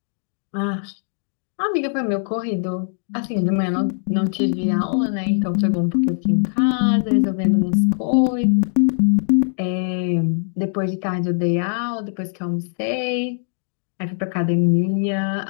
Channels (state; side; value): silent; right; 60 dB below the other